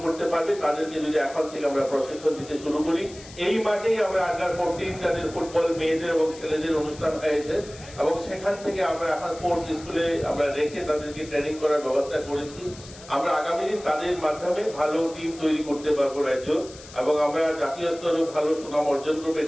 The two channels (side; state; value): left; noise; hiss, 18 dB below the sound